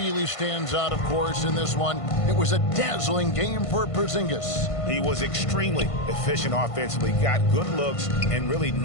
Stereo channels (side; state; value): right; late; 1.5 ms